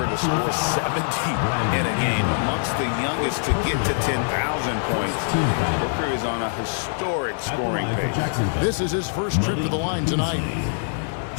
to score 70 in a game, amongst the youngest to get to 10,000 points. Booker is on a historic scoring pace. This is his first trip to the line tonight.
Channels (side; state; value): right; silent; digital silence